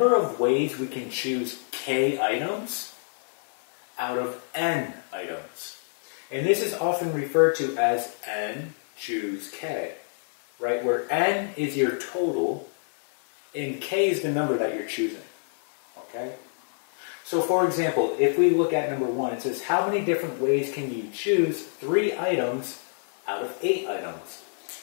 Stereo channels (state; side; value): silent; right; digital silence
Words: of ways we can choose k items out of n items. And this is often referred to as n choose k, right? Where n is your total and k is the number that you're choosing, okay? So for example, if we look at number 1, it says how many different ways can you choose 3 items out of 8 items?